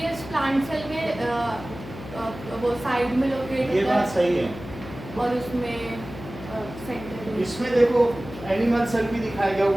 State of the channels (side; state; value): left; noise; hum, 13 dB below the sound